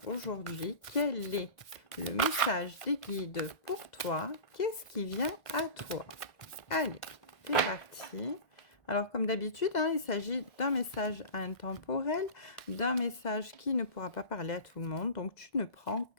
aujourd'hui. Quel est le message des guides pour toi? Qu'est-ce qui vient à toi? Allez, c'est parti. Alors, comme d'habitude, hein, il s'agit d'un message intemporel, d'un message qui ne pourra pas parler à tout le monde. Donc, tu ne prends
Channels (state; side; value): late; right; 2.0 ms